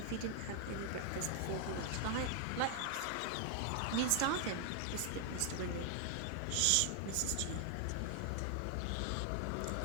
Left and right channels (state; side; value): different; both; correlation 0.00